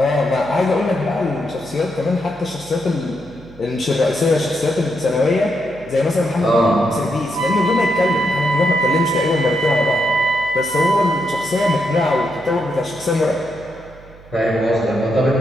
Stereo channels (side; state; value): right; noise; hum, 22 dB below the sound